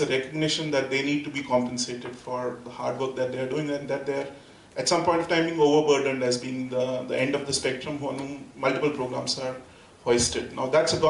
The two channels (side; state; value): both; identical; correlation 1.00